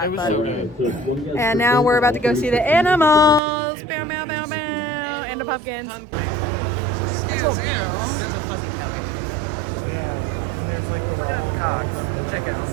But. So good. And now we're about to go see the animals. Bow, bow, bow, bow. And the pumpkins. Excuse you. There's a fucking cock. Cocks. Chickens,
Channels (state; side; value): drops out; left; at 3.4 s